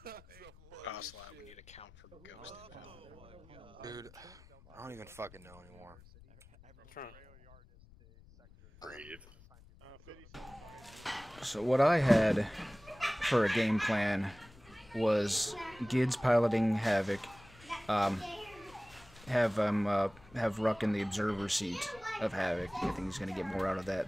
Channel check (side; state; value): left; noise; rumble, 23 dB below the sound